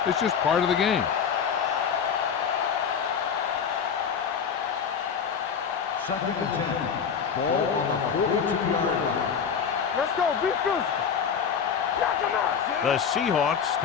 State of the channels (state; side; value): quieter; right; 7.0 dB